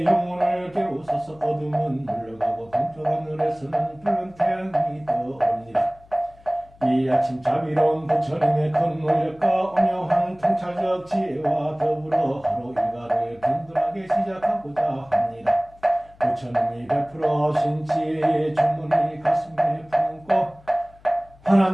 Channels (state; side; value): noise; left; hum, 26 dB below the sound